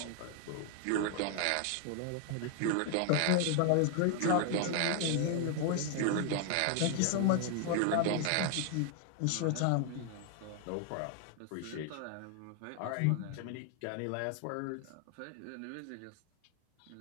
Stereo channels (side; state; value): both; different; correlation 0.00